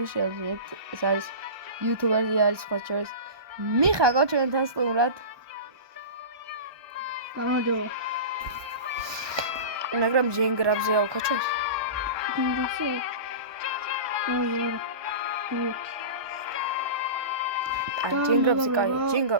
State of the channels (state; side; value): late; left; 1.2 ms